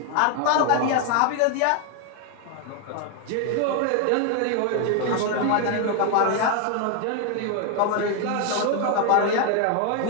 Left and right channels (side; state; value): both; different; correlation 0.01